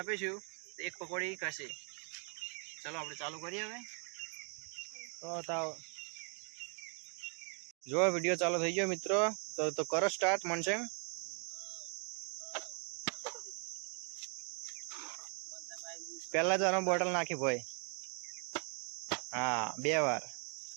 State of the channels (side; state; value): left; quieter; 39.6 dB